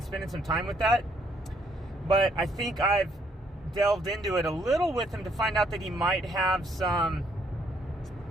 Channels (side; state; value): both; normal; correlation 0.69